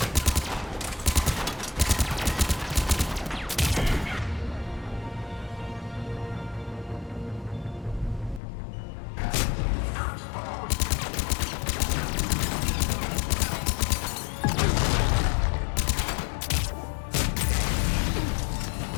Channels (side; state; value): right; drops out; at 8.4 s